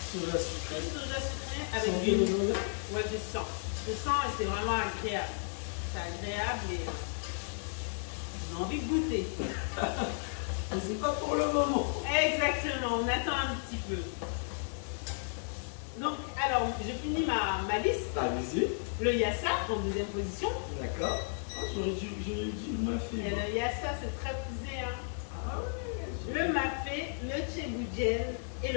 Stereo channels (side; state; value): right; silent; digital silence